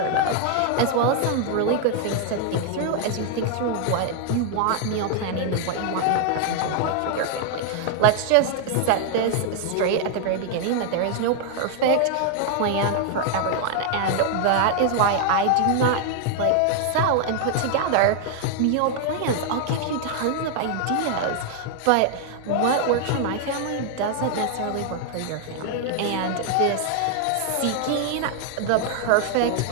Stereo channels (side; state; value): both; different; correlation 0.00